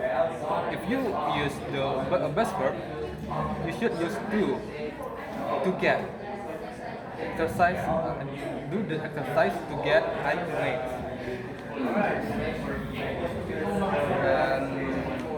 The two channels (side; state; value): both; identical; correlation 1.00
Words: if you use the best verb, you should use to get exercise. Do the exercise to get high grades. And